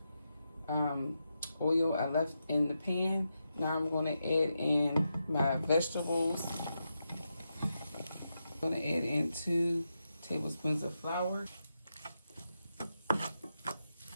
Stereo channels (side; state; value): both; inverted; correlation -0.87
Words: oil I left in the pan. Now I'm going to add in my vegetables. I'm going to add in 2 tablespoons of flour.